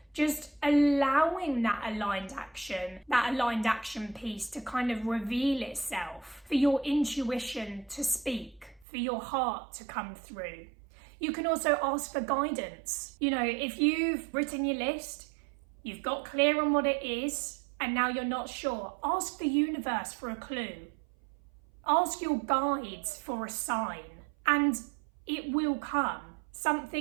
just allowing that aligned action piece to kind of reveal itself, for your intuition to speak, for your heart to come through. You can also ask for guidance. If you've written your list, you've got clear on what it is, and now you're not sure, ask the universe for a clue. Ask your guides for a sign, and it will come.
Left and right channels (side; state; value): left; drops out; at 8.8 s